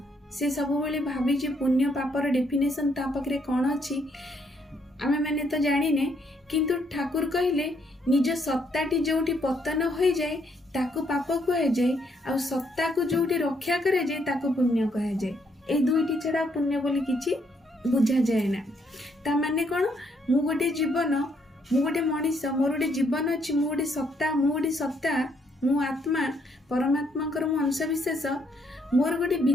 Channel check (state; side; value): normal; both; correlation 0.72